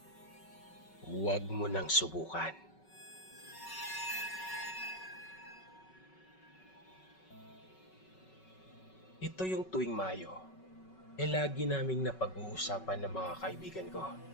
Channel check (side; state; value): right; late; 5.3 ms